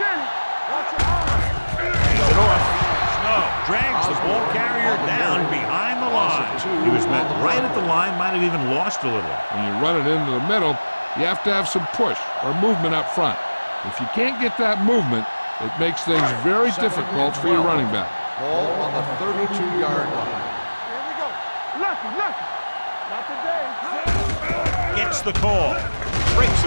Watch your eyes. Hands it off. Snow drags the ball carrier down behind the line. He was met right at the line, might have even lost a little. When you run it into the middle, you have to have some push or movement up front. If you can't get that movement, it makes things very difficult for your running back. Ball on the 32-yard line. Here we go. Lucky. Not today. Gets the call. Breaks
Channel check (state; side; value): inverted; both; correlation -1.00